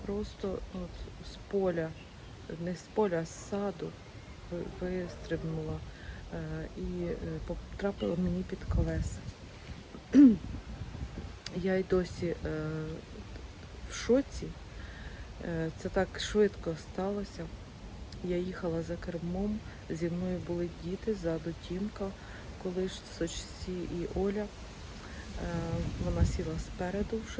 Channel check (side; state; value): both; identical; correlation 1.00